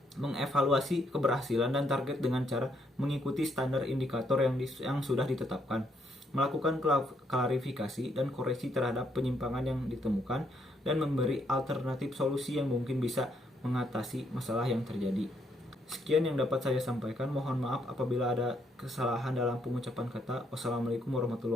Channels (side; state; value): both; normal; correlation 0.73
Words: mengevaluasi keberhasilan dan target dengan cara mengikuti standar indikator yang sudah ditetapkan, melakukan klarifikasi dan koreksi terhadap penyimpangan yang ditemukan, dan memberi alternatif solusi yang mungkin bisa mengatasi masalah yang terjadi. Sekian yang dapat saya sampaikan. Mohon maaf apabila ada kesalahan dalam pengucapan kata. Wassalamualaikum